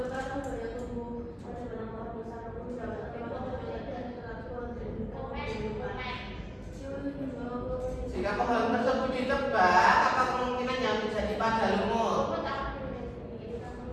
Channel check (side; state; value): both; identical; correlation 1.00